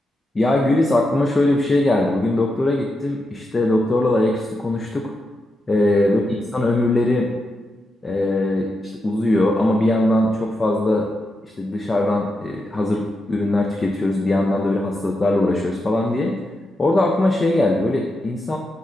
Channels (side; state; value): both; normal; correlation 0.86